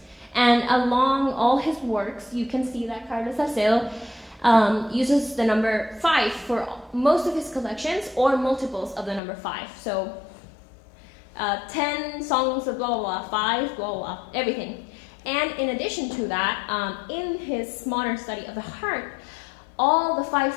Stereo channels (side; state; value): right; drops out; at 9.2 s